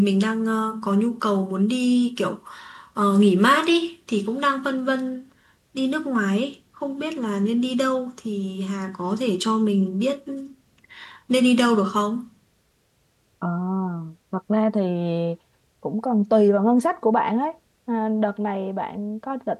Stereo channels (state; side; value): identical; both; correlation 1.00